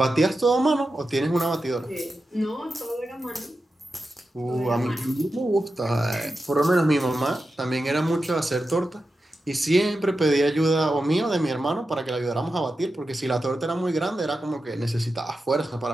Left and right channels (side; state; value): both; normal; correlation 0.91